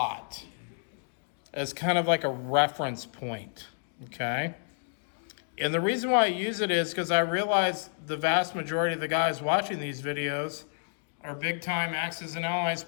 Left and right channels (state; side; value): silent; right; digital silence